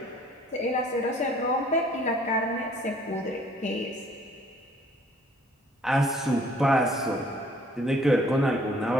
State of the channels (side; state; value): both; normal; correlation 0.57